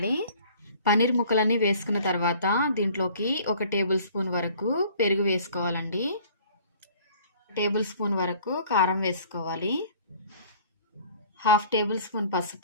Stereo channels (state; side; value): inverted; both; correlation -0.52